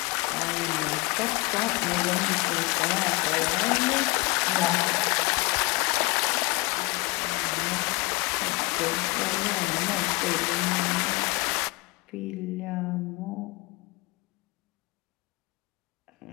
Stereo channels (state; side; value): quieter; right; 25.2 dB